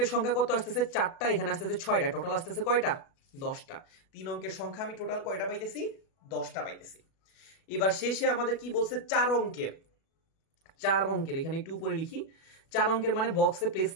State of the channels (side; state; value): right; late; 37 ms